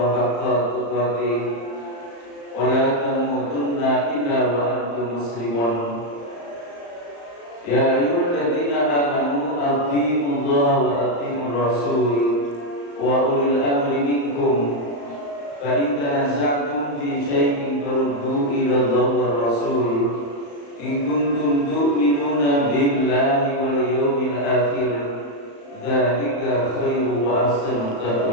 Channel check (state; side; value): late; right; 35 ms